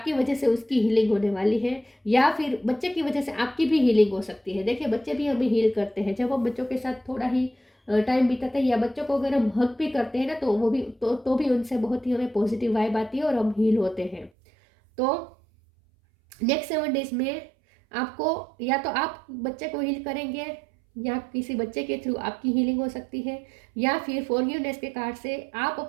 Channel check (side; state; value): left; drops out; at 14.3 s